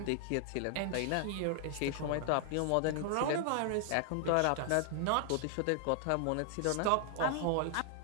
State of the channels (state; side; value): different; both; correlation 0.00